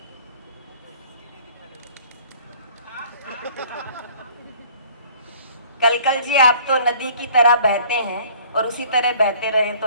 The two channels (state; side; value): inverted; both; correlation -0.53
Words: कल जी आप तो नदी की तरह बहते हैं और उसी तरह बहते रहे